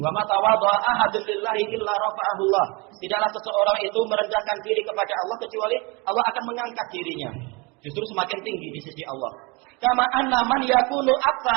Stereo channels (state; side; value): quieter; left; 27.9 dB